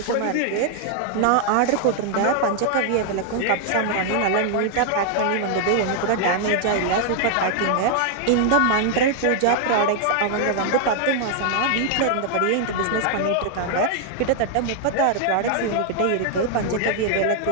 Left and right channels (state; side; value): different; both; correlation 0.00